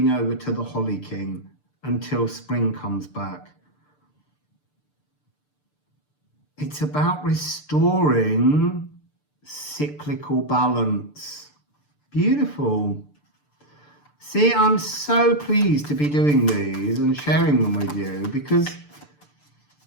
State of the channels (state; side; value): late; right; 6.8 ms